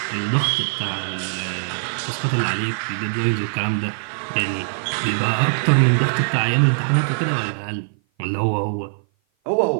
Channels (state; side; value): silent; left; 55 dB below the other